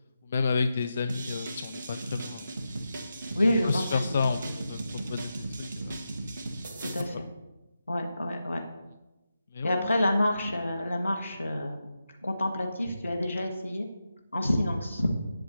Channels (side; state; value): both; inverted; correlation -0.89